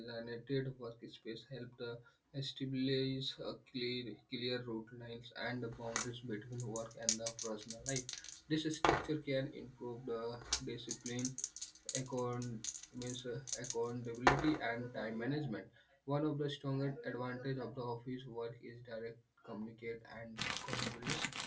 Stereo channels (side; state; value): both; identical; correlation 1.00